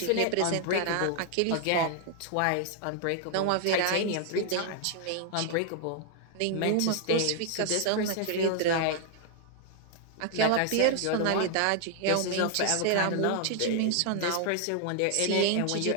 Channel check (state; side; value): different; both; correlation 0.00